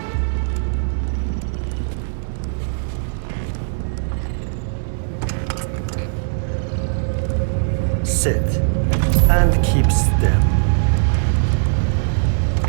Sit and keep still.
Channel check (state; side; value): silent; left; 66 dB below the other